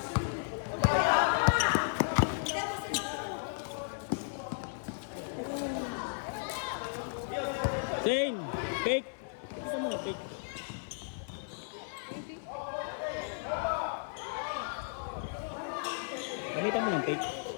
Zane! Fake! Kita mo na, fake. Gamitan mo ng fake.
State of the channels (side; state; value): right; silent; 55 dB below the other